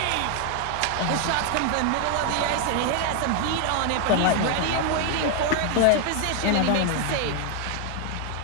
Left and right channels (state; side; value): different; both; correlation 0.00